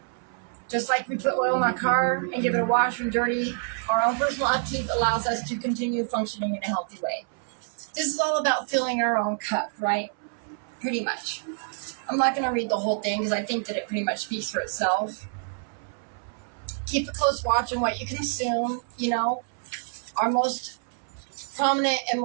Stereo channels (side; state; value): left; silent; 60 dB below the other